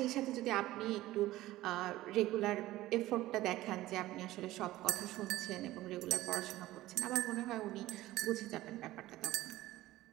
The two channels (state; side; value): quieter; left; 16.3 dB